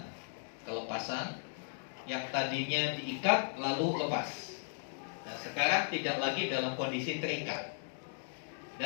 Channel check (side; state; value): right; silent; digital silence